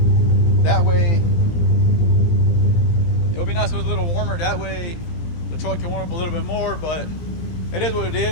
That way, it would be nice if it was a little warmer. That way, the truck can warm up a little bit more, but it is what it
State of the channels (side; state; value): right; late; 17 ms